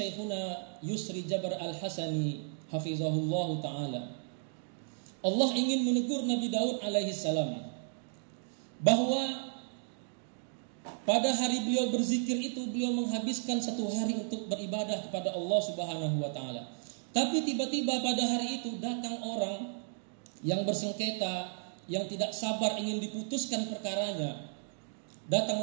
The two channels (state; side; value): silent; left; digital silence